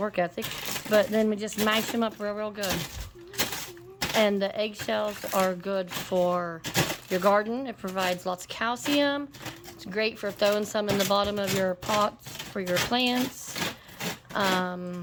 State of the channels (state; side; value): identical; both; correlation 1.00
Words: ethic. But then we just mash them up real good. And the eggshells are good for your garden. It provides lots of calcium. It's great for throwing some in the bottom of your pots for your plants.